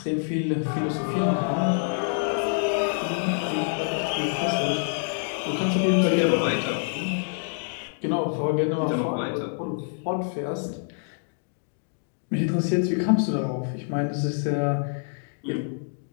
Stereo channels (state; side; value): silent; right; digital silence